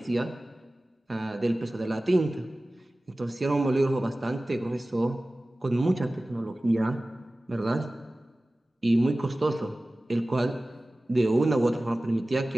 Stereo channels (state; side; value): normal; both; correlation 0.97